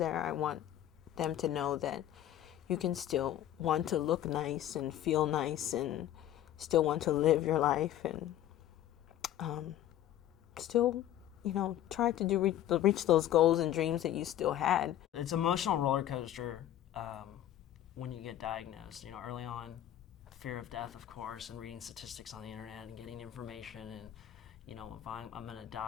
I want them to know that you can still want to look nice and feel nice and still want to live your life, and still, you know, try to reach those goals and dreams that you still had. It's an emotional roller coaster when you get diagnosed. You know, early on, fear of death, of course, and reading statistics on the internet and getting information, and you know, if I'm going to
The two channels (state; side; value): quieter; right; 12.2 dB